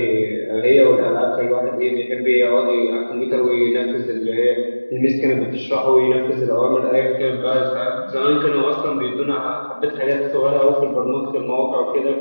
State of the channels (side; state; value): both; inverted; correlation -1.00